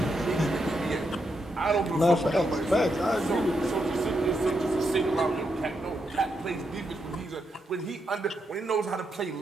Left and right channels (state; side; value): normal; both; correlation 0.82